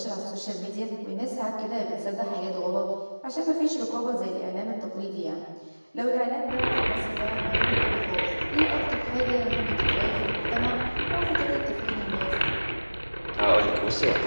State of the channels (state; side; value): inverted; both; correlation -1.00